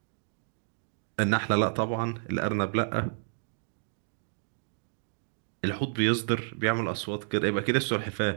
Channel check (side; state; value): left; silent; digital silence